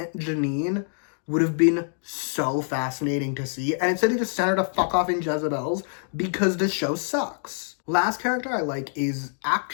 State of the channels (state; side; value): silent; right; digital silence